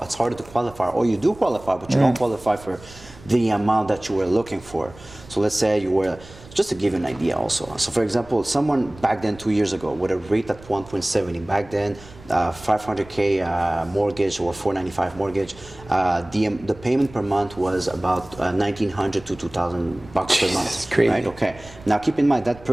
to qualify. Or you do qualify, but you don't qualify for the amount that you were looking for. So let's say you were, just to give you an idea also. So for example, someone back then 2 years ago with a rate at 1.70, back then 500K mortgage or 495 mortgage, the payment per month was about 1,900 to 2,000 bucks per month. Crazy. Right? Okay. Now keep in mind that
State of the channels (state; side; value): noise; right; rumble, 20 dB below the sound